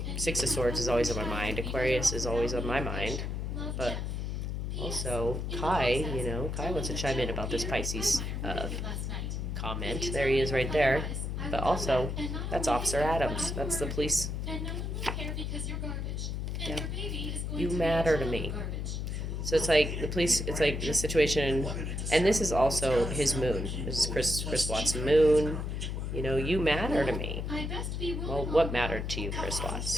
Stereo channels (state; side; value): noise; left; hum, 3 dB below the sound